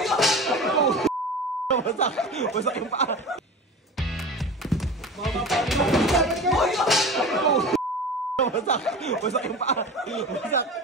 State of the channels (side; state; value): both; normal; correlation 0.33